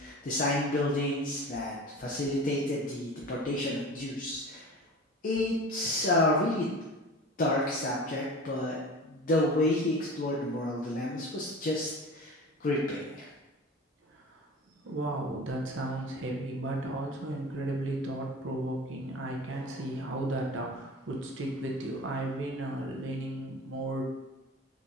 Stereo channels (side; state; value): both; normal; correlation 0.36